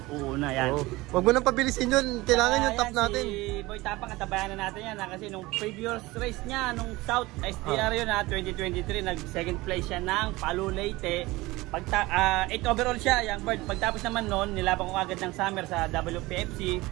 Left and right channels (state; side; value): quieter; left; 20.4 dB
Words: yan. Oh. Huwag mo nang pabilisin yun. Kailangan yung top Ayan, natin. Si Boy Tapang, katabayan na natin yan. Kasi nung previous race niya, nung South STR yun 2023, nag second place siya ng Palu Leyte. 8 overall siya, young bird. Pagtapos naman noon, nilaban ko agad ng summer sa WPFC,